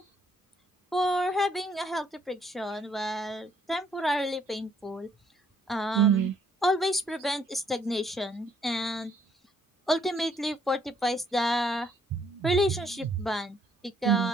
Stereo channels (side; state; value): both; normal; correlation 0.67